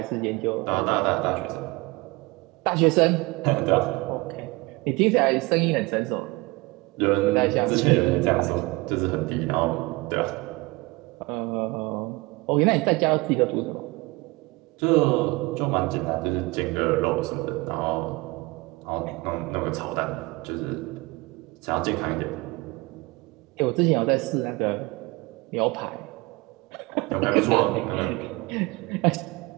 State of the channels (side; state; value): left; quieter; 23.9 dB